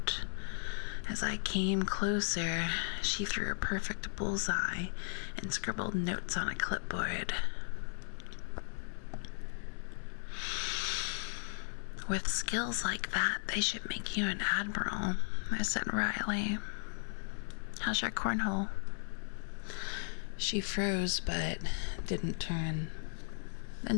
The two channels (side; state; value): right; silent; 54 dB below the other